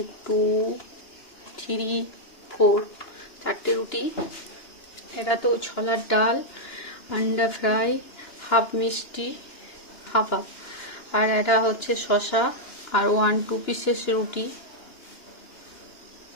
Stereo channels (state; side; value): late; right; 2.9 ms